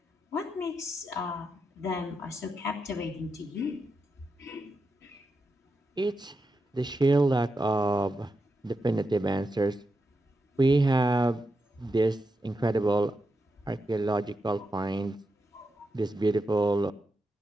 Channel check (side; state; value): both; normal; correlation 0.87